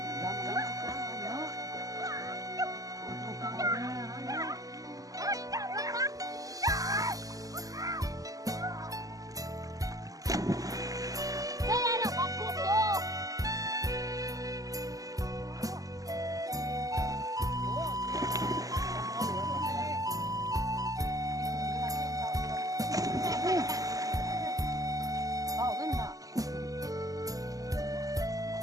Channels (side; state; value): left; late; 0.17 ms